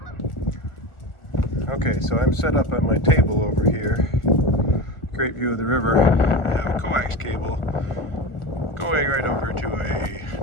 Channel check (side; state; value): right; late; 1.4 ms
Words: Okay, so I'm set up at my table over here. Great view of the river. I have a coax cable going right over to a